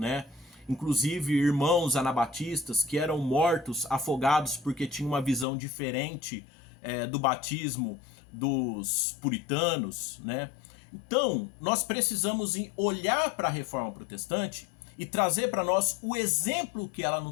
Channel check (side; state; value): right; drops out; at 5.5 s